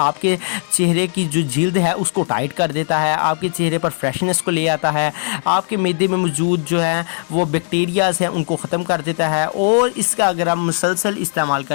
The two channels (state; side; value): silent; right; digital silence